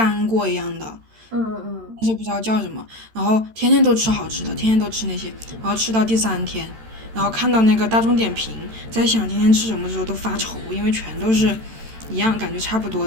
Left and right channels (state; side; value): late; left; 13 ms